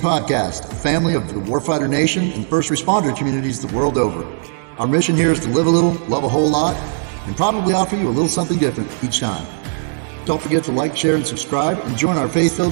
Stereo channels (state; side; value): silent; left; 67 dB below the other